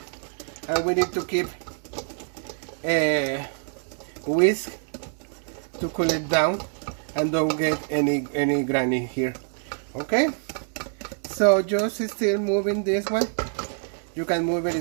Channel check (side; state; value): left; silent; 57 dB below the other